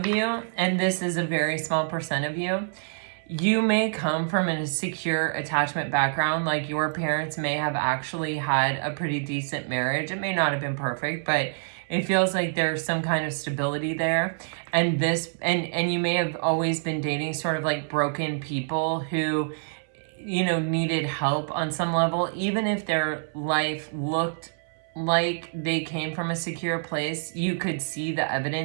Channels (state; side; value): silent; left; 60 dB below the other